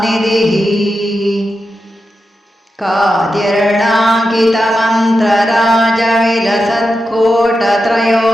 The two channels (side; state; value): both; normal; correlation 0.89